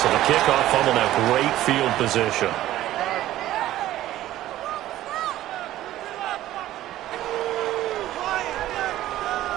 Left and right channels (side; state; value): left; quieter; 14.3 dB